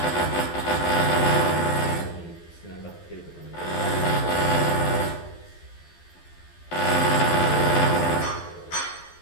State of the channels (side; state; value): right; late; 12 ms